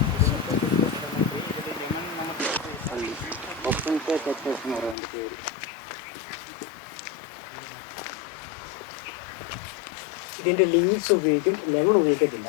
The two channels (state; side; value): drops out; right; at 5.0 s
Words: ഇതിൻ്റെ ലീവ്സ് ഉപയോഗിക്കും, ലെമൺ ഉപയോഗിക്കത്തില്ല.